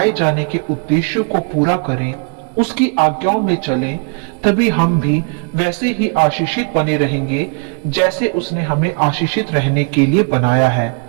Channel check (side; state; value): left; quieter; 38.5 dB